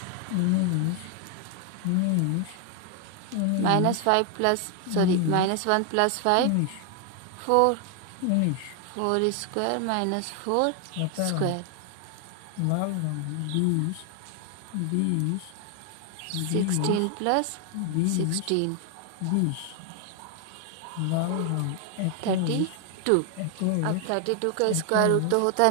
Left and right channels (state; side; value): different; both; correlation 0.00